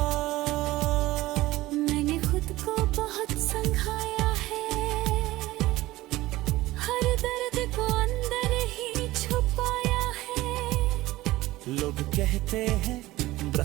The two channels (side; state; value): left; quieter; 17.7 dB